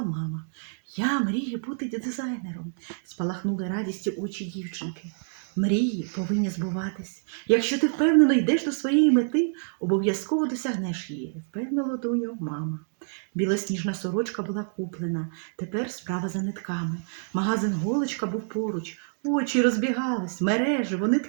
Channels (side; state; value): left; silent; digital silence